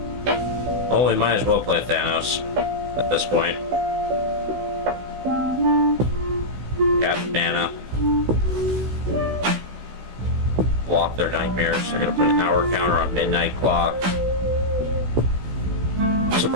Oh, we might as well play Thanos at this point. Cap mana. Block their nightmares. They're gonna put an hour counter on midnight clock. I'm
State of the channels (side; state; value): left; late; 16 ms